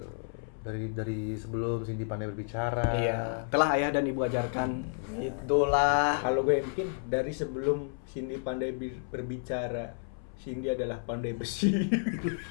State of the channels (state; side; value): silent; right; 57 dB below the other